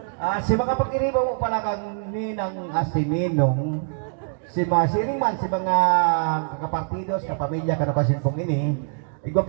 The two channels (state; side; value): silent; left; digital silence